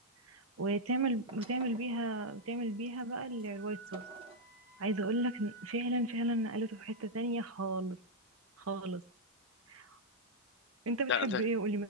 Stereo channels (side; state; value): both; normal; correlation -0.03